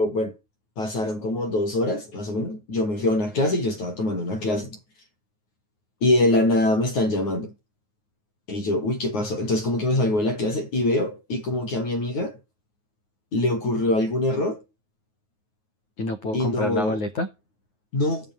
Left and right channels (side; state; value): right; late; 9.5 ms